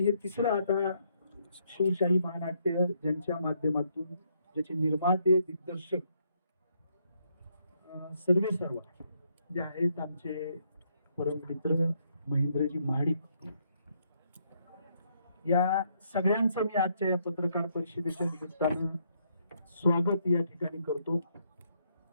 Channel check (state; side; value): inverted; both; correlation -0.73